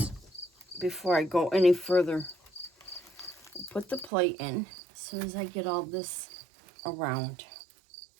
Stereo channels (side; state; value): left; drops out; at 4.1 s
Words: before I go any further. Put the plate in. As soon as I get all this around,